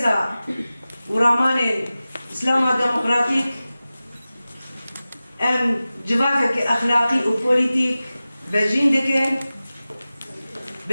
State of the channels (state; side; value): inverted; both; correlation -0.96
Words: ورامان اسلام ديمقراطيك ام جواكك اخلاقي وبوليتيك بجين دكن